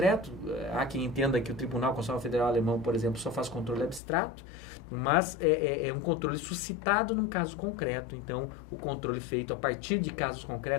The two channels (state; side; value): drops out; right; at 4.0 s